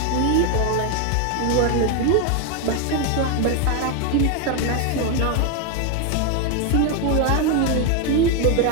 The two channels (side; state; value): both; different; correlation 0.01